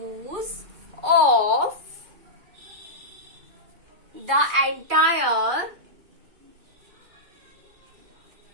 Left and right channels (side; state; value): left; late; 2.3 ms